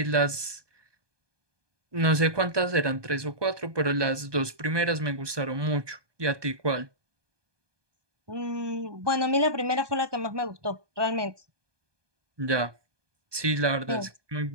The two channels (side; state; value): left; late; 1.2 ms